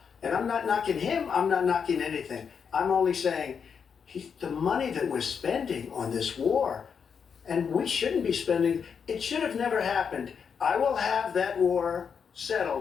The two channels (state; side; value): quieter; right; 6.6 dB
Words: And I'm not knocking him. I'm not knocking anything. I'm only saying the money that we're spending on this war, and we shouldn't be spending, it should have never happened. I will have that war